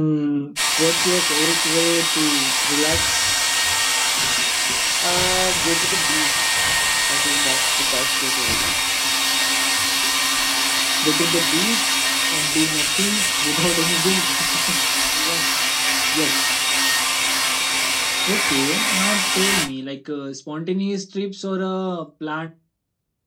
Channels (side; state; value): both; identical; correlation 1.00